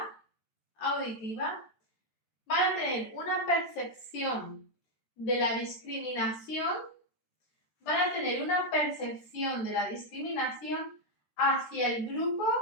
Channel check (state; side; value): late; right; 13 ms